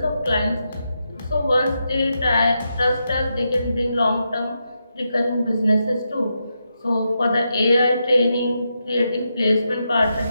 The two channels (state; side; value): inverted; both; correlation -0.85